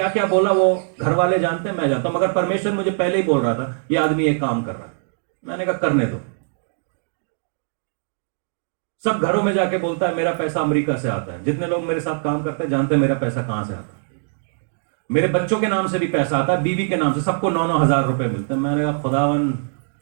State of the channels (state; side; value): silent; left; digital silence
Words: क्या बोला वो घर वाले जानते हैं, मैं जानता हूं, मगर परमेश्वर मुझे पहले ही बोल रहा था ये आदमी एक काम कर रहा है। मैंने कहा करने दो। सब घरों में जाके बोलता है मेरा पैसा अमेरिका से आता है। जितने लोग मेरे साथ काम करते हैं जानते हैं मेरा पैसा कहां से आता है। मेरे बच्चों के नाम से भी पैसा आता है, बीवी के नाम से, सबको 9-9 हजार रुपए मिलते हैं। मैंने कहा खुदावन